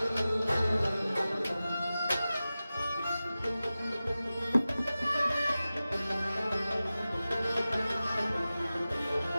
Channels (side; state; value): both; inverted; correlation -0.95